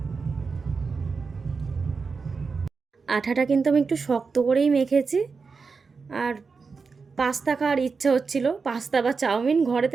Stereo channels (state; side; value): quieter; left; 4.9 dB